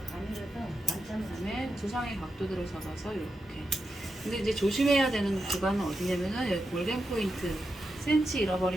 그다음에 두상의 각도대로 잡아서 이렇게. 근데 이제 조심해야 되는 구간은 어디냐면은 여기 골든 포인트 센치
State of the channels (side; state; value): both; normal; correlation 0.87